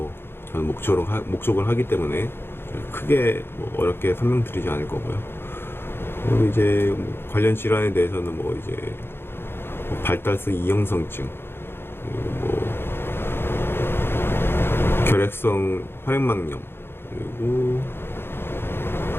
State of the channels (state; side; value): late; right; 0.11 ms